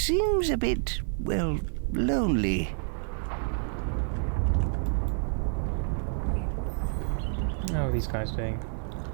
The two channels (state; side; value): silent; left; 59 dB below the other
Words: a bit, well, lonely. How are these guys doing?